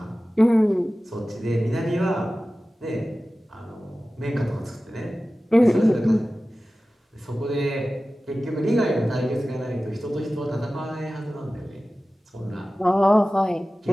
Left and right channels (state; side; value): normal; both; correlation 0.96